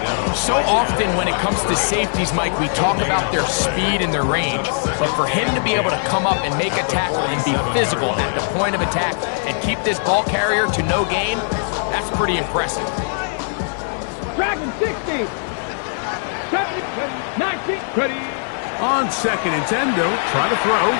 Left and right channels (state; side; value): silent; right; digital silence